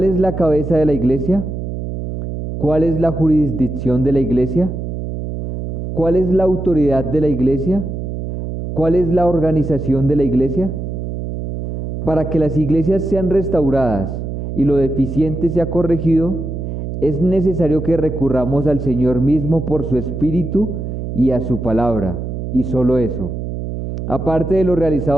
es la cabeza de la iglesia? ¿Cuál es la jurisdicción de la iglesia? ¿Cuál es la autoridad de la iglesia? ¿Cuál es la organización de la iglesia? Para que las iglesias sean restauradas y lo deficiente sea corregido, es necesario que recurramos al Señor mismo por su Espíritu y a su palabra, y solo eso. Aparte de lo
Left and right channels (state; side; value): noise; right; hum, 5 dB below the sound